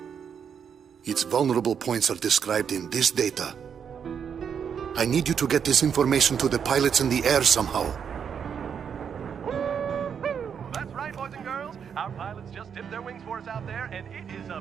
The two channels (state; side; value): quieter; left; 7.4 dB